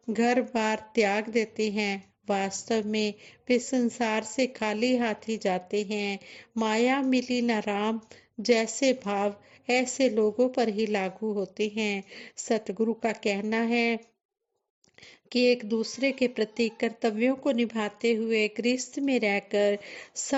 घर बार त्याग देते हैं, वास्तव में वे संसार से खाली हाथ ही जाते हैं। माया मिली न राम जैसे भाव ऐसे लोगों पर ही लागू होते हैं। सतगुरु का कहना है कि एक दूसरे के प्रति कर्तव्यों को निभाते हुए गृहस्थ में रहकर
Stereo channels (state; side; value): identical; both; correlation 1.00